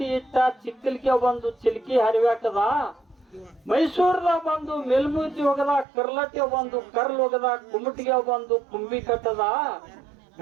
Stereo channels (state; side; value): drops out; left; at 5.9 s